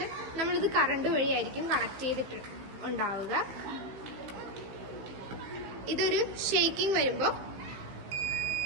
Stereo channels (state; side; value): late; left; 16 ms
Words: നമ്മളിത് കറണ്ട് വഴിയായിരിക്കും കണക്ട് ചെയ്തിട്ട് ഉണ്ടാവുക. ഇതൊരു ഷേക്കിംഗ് വരുമ്പോൾ